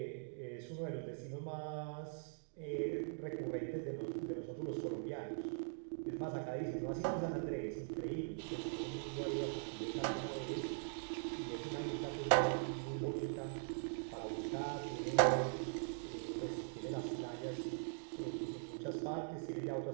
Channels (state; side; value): silent; left; digital silence